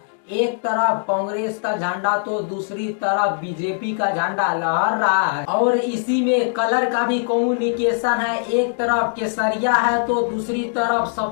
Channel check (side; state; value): right; silent; digital silence